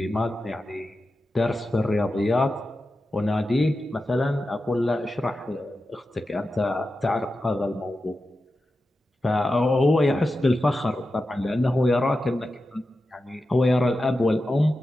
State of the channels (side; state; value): both; normal; correlation 0.91